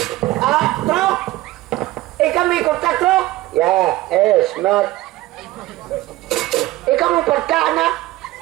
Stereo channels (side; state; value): left; quieter; 17.5 dB